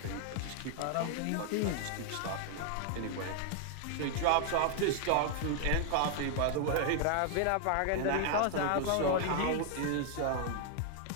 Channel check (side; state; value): both; different; correlation 0.00